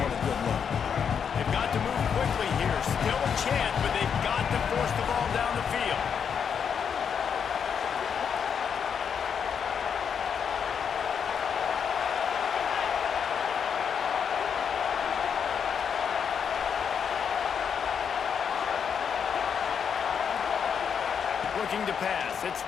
a good note? They've got to move quickly here. Still a chance, but they've got to force the ball down the field. Looking to pass. It's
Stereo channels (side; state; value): right; quieter; 7.2 dB